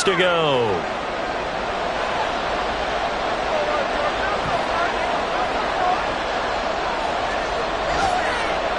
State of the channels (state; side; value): identical; both; correlation 1.00